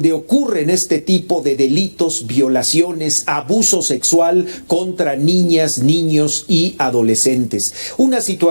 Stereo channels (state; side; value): inverted; both; correlation -1.00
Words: ocurren este tipo de delitos, violaciones, abuso sexual contra niñas, niños y adolescentes. Una